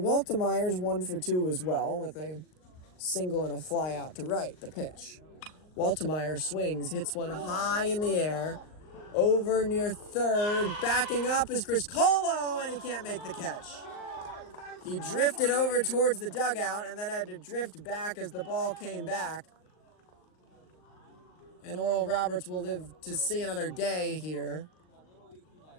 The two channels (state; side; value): late; right; 39 ms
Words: 1 for 2 as well, with a single and a fly out to right, the pitch. Waltemeyer swings, hits one high in the air, over near third, backing up is Chris Colo, and he can't make the catch. He drifted over towards the dugout and then had to drift back as the ball came back. And Oral Roberts will live to see another day here.